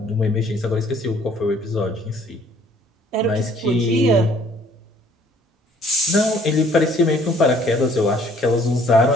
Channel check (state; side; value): normal; both; correlation 0.59